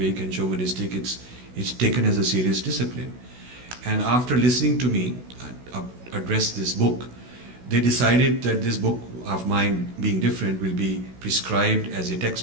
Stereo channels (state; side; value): late; left; 16 ms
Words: and chauvinistic. It's taken as a serious discipline. And after listening to me address this book, they decided that this book of mine being different will be prescribed as a